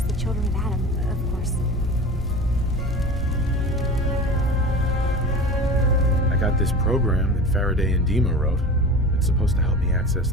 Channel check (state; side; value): normal; both; correlation 0.34